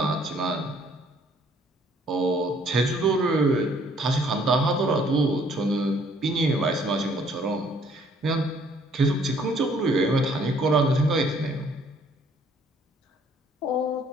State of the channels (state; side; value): normal; both; correlation 0.62